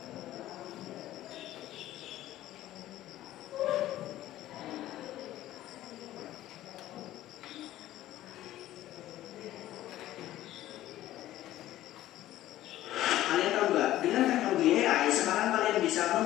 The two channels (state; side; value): quieter; right; 14.3 dB